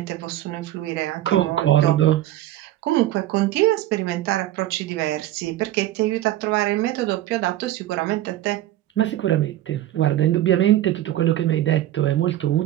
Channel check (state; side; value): quieter; left; 13.8 dB